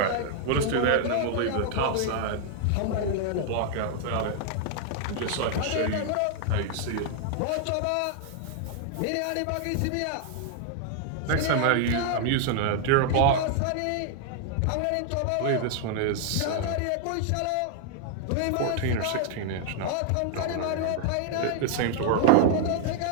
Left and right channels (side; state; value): both; different; correlation 0.00